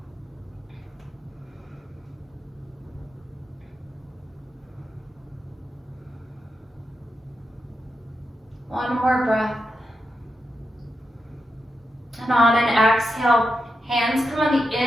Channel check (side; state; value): both; normal; correlation 0.86